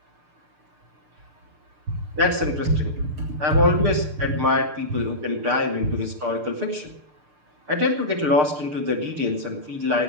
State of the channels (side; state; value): left; late; 6.7 ms